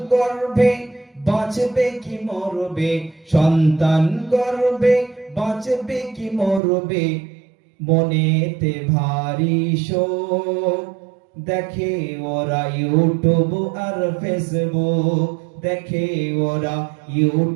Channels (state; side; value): drops out; left; at 6.6 s